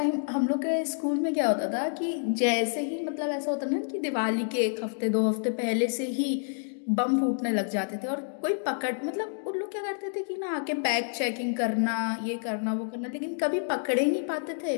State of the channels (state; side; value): silent; right; digital silence